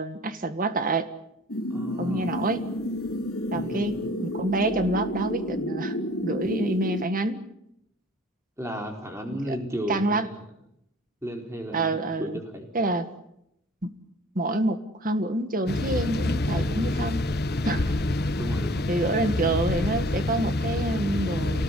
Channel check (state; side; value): normal; both; correlation 0.50